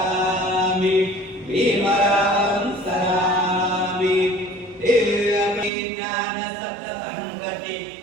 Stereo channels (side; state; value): left; drops out; at 5.7 s